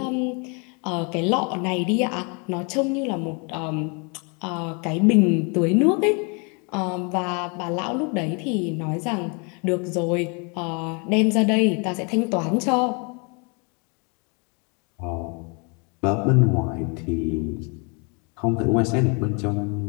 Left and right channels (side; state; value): right; quieter; 33.9 dB